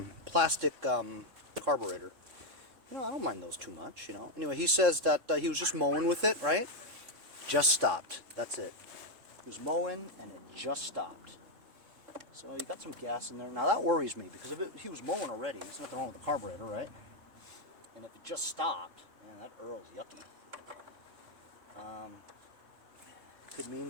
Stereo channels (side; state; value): left; late; 3.7 ms